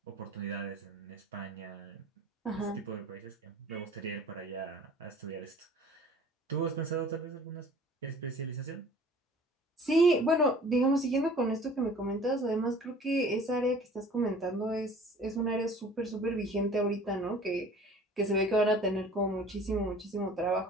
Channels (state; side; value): normal; both; correlation 0.48